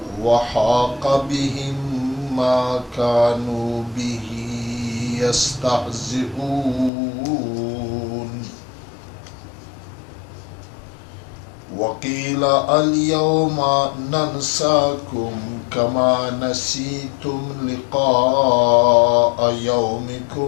وحاق بهم ما كانوا به يستهزئون وقيل اليوم ننساكم كما نسيتم لقاء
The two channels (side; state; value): right; drops out; at 6.9 s